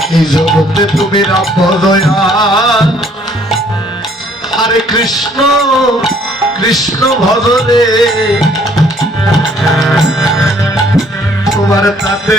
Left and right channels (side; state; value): both; normal; correlation 0.61